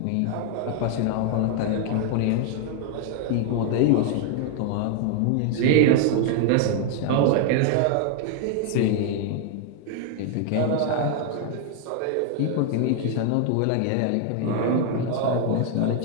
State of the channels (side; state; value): both; different; correlation 0.00